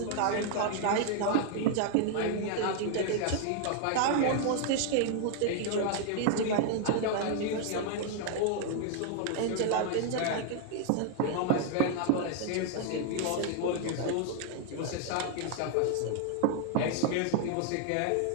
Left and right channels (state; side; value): different; both; correlation 0.00